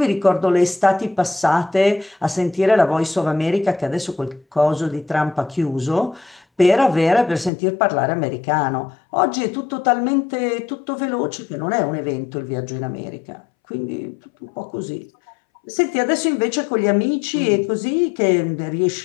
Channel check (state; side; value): drops out; right; at 7.5 s